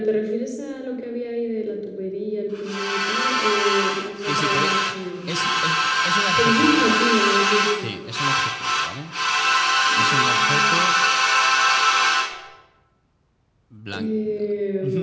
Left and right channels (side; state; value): both; identical; correlation 1.00